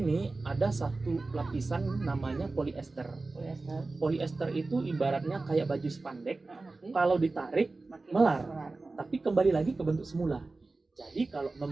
ada satu lapisan namanya polyester. Polyester itu ibaratnya kayak baju spandek. Kalau ditarik, melar. Tapi kembali lagi ke bentuk semula. Jadi kalau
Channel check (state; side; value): quieter; left; 3.5 dB